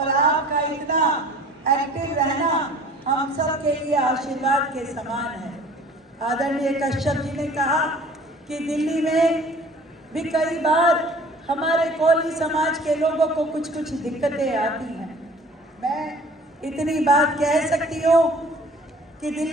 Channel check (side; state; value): both; normal; correlation 0.49